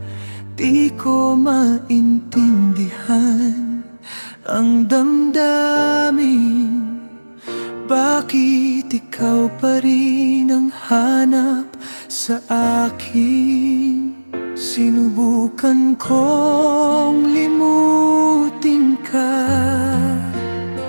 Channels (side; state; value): both; inverted; correlation -1.00